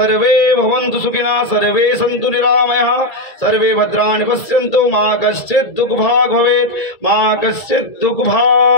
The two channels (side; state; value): right; late; 1.8 ms